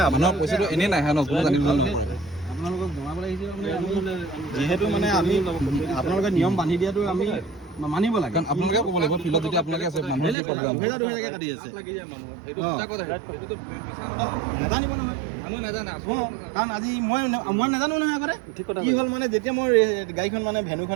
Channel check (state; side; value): drops out; left; at 10.4 s